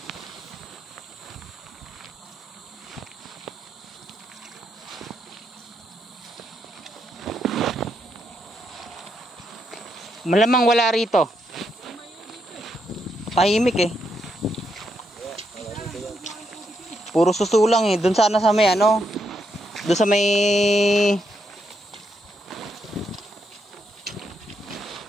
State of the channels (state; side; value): normal; both; correlation 0.80